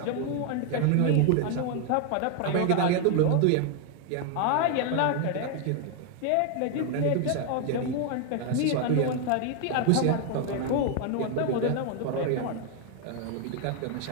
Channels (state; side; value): different; both; correlation 0.00